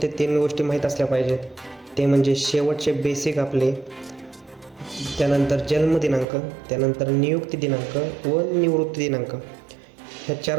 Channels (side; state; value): left; drops out; at 6.2 s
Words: ते 3 गोष्टी माहीत असल्या पाहिजेत. ते म्हणजे शेवटचे बेसिक आपले, त्यानंतर जन्मदिनांक, त्यानंतर नियुक्ती दिनांक व निवृत्ती दिनांक, ह्या 4